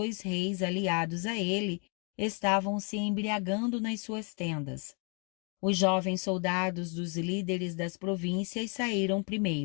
reis aliados a ele estavam se embriagando nas suas tendas. Os jovens soldados dos líderes das províncias saíram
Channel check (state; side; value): quieter; right; 36.5 dB